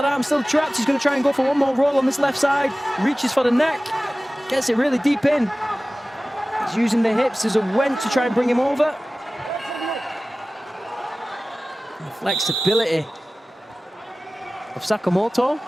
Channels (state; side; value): normal; both; correlation 0.97